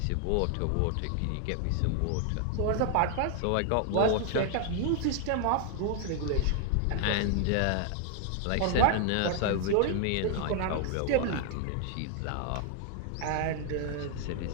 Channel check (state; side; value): different; both; correlation 0.00